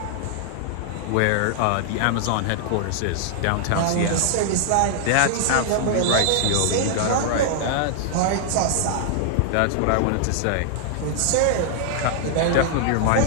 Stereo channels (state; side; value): different; both; correlation -0.01